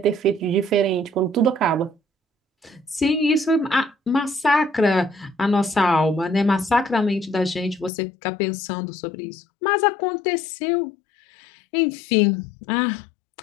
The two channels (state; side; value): drops out; right; at 7.9 s